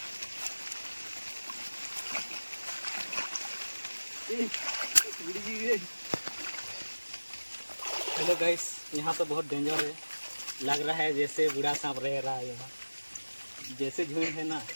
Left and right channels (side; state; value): both; inverted; correlation -1.00